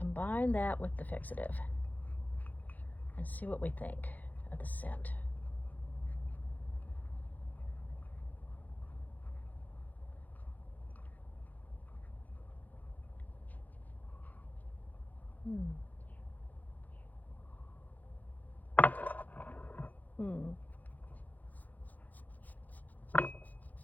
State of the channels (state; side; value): late; right; 0.081 ms